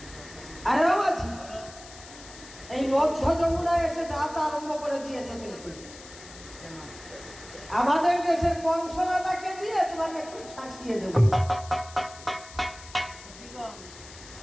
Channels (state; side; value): noise; left; hiss, 17 dB below the sound